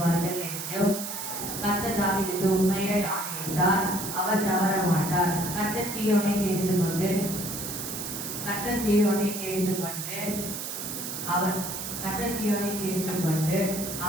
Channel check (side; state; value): right; noise; hiss, 6 dB below the sound